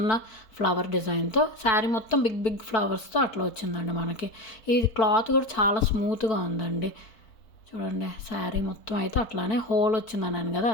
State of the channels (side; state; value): right; late; 4.5 ms